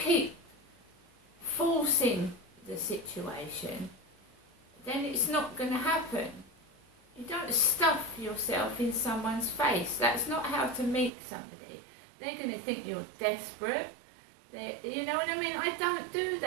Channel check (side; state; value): left; drops out; at 11.1 s